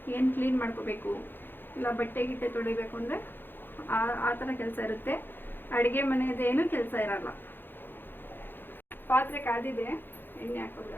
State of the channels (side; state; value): right; late; 0.098 ms